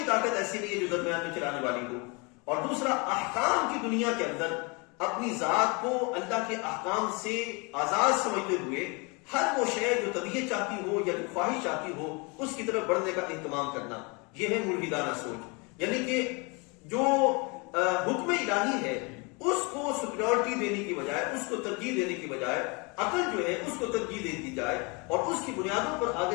طاقت ایسی نہیں ہے جو درمیان میں چلانے والی ہو. اور دوسرا، احکام کی دنیا کے اندر اپنی ذات کو اللہ کے احکام سے آزاد سمجھتے ہوئے ہر وہ شے جو طبیعت چاہتی ہو یا جو خواہش چاہتی ہو اس کی طرف بڑھنے کا اہتمام کرنا، یہ ہے ملحدانہ سوچ. یعنی کہ جو حکم الہی ہے اس کو سپیریورٹی دینے کی بجائے، اس کو ترجیح دینے کی بجائے عقل جو ہے اس کو ترجیح دے دی جائے اور اس کی بنیادوں پر آگے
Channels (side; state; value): right; quieter; 30.1 dB